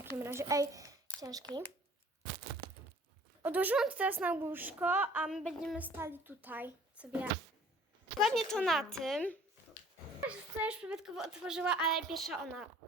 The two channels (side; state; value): both; normal; correlation 0.52